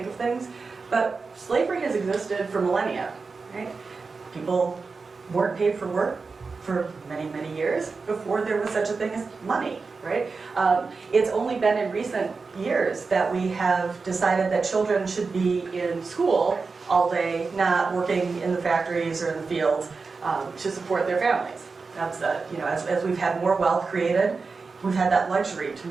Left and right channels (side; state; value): left; quieter; 4.4 dB